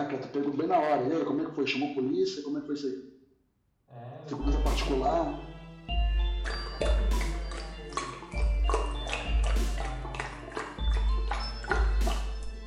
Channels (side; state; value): both; identical; correlation 1.00